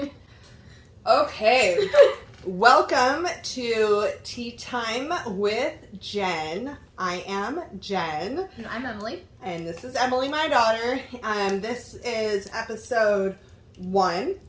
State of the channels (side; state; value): both; identical; correlation 1.00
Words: Okay. Welcome to Tea Time with Jen. I am Jen. And I'm Emily. And this is Emily, my daughter. This is episode 1.